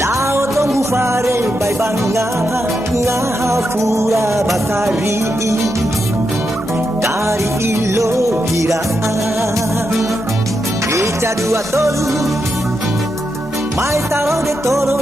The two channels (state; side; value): normal; both; correlation 0.85